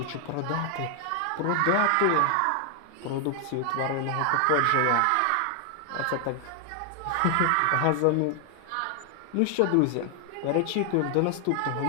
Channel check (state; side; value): different; both; correlation 0.00